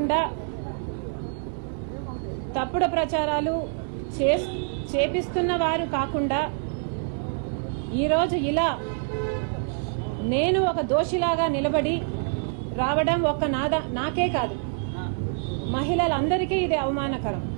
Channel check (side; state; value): left; silent; 61 dB below the other